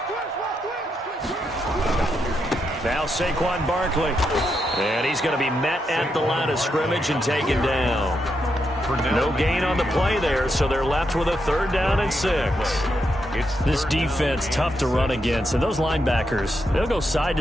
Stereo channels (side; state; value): both; normal; correlation 0.82